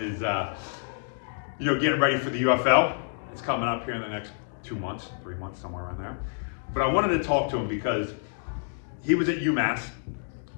is, getting ready for the UFL. It's coming up here in the next 2 months, 3 months, somewhere around there. But I wanted to talk to him because he was at UMass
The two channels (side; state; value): right; silent; digital silence